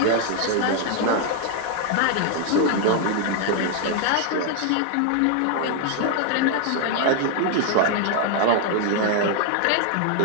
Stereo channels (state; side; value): different; both; correlation 0.00